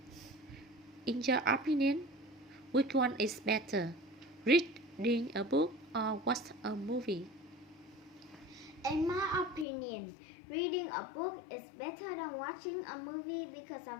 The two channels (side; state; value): right; drops out; at 9.7 s